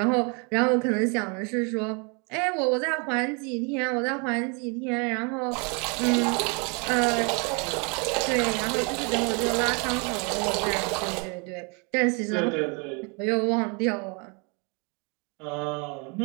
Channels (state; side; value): quieter; left; 33.4 dB